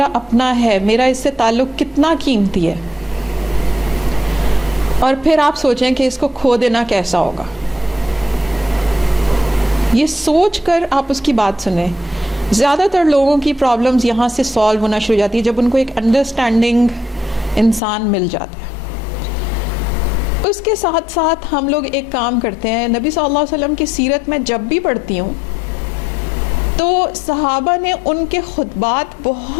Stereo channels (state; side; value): drops out; right; at 17.8 s